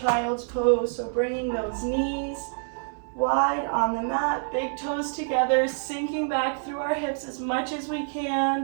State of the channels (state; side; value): silent; left; digital silence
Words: pose. So bringing those knees wide on the mat, big toes together, sinking back through our hips as much as we